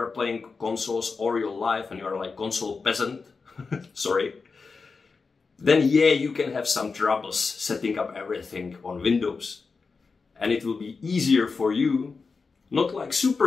playing consoles all your life and you are like console peasant, sorry, then yeah, you can have some troubles setting up everything on Windows. And it will be easier for you. Not like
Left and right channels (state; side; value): quieter; right; 4.6 dB